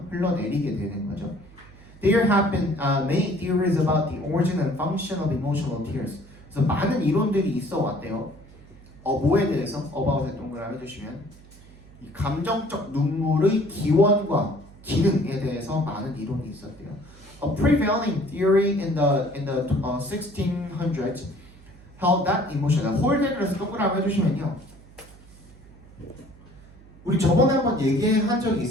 흘러내리게 되는 거죠. There have been many theories about the origin and function of emotional tears. 그래서 많은 이론들이 있어 왔대요. 뭐에 대해서? about에 동그라미 해주시면 이 감정적 눈물의 기원과 기능에 대해서 많은 이론이 있었대요. A prevailing theory in the 1600s held that emotion. 홀드 그래서 동그라미 해주시면요. 우리 저번에 한번 얘기한 적이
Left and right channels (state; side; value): noise; right; hum, 22 dB below the sound